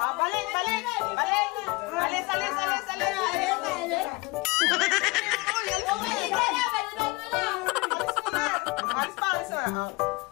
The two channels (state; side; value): quieter; right; 24.6 dB